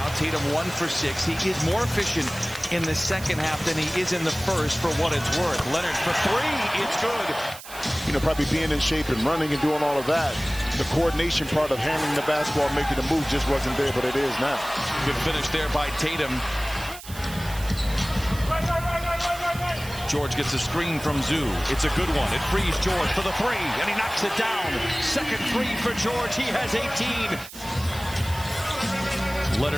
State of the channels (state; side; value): noise; right; hiss, 14 dB below the sound